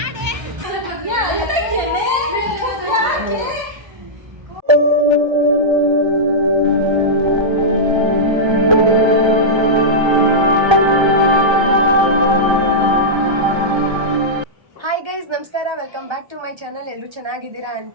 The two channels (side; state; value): left; late; 1.3 ms